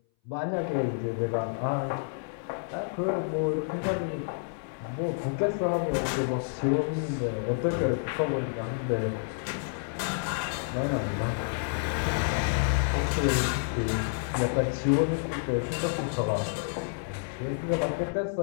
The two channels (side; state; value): right; silent; 58 dB below the other